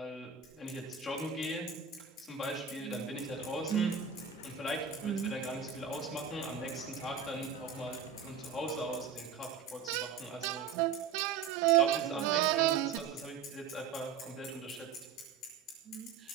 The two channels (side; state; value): left; quieter; 6.8 dB